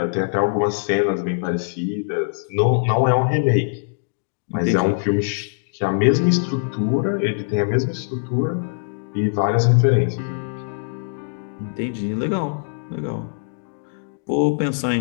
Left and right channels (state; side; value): silent; right; digital silence